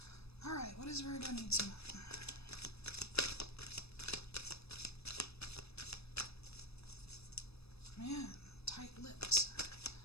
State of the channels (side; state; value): right; late; 0.78 ms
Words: Alright, what does Virgo need to know? Man, tight-lipped.